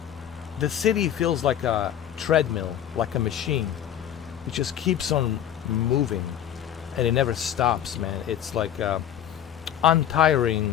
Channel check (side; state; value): right; quieter; 10.4 dB